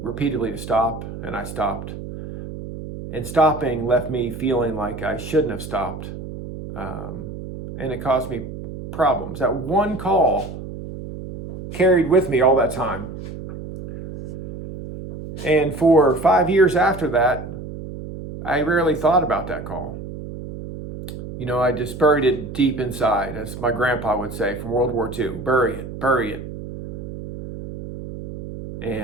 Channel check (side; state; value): right; noise; hum, 10 dB below the sound